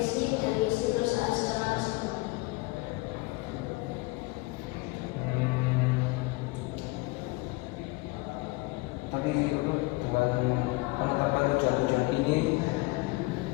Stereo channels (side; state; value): right; quieter; 23.4 dB